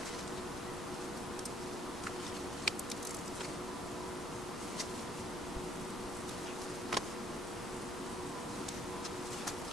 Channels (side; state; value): both; normal; correlation 0.65